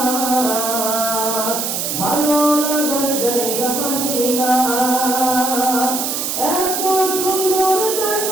ভালো লাগার জায়গা মদিনা। এত সুন্দর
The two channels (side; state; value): right; noise; hiss, 2 dB below the sound